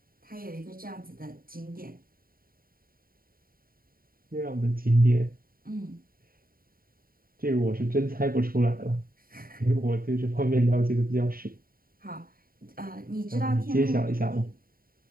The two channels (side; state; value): left; late; 0.42 ms